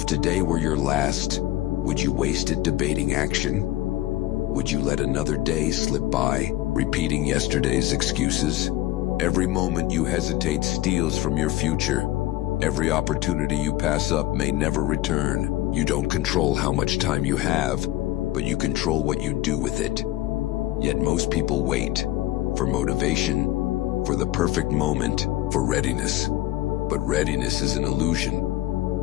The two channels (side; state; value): right; quieter; 15.6 dB